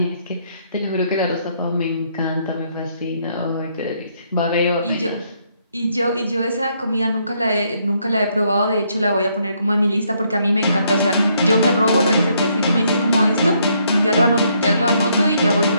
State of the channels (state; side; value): inverted; both; correlation -0.72